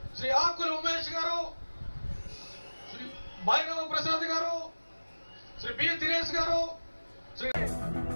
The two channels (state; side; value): inverted; both; correlation -1.00